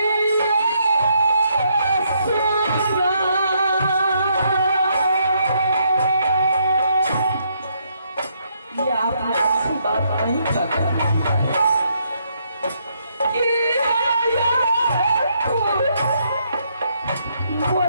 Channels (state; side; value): inverted; both; correlation -0.73